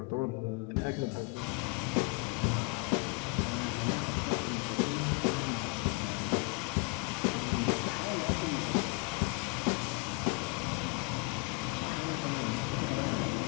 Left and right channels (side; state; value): right; quieter; 28.5 dB